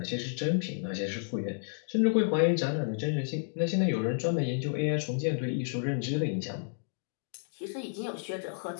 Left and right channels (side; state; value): right; silent; digital silence